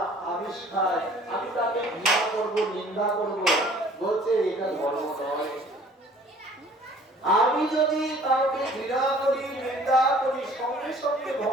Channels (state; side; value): normal; both; correlation 0.53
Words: আমিষ খায়, আমি তাকে ঘৃণা করবো, নিন্দা করবো, বলছে এটা ধর্ম নয়। আমি যদি কাউকে ঘৃণা করি, নিন্দা করি, সঙ্গে সঙ্গে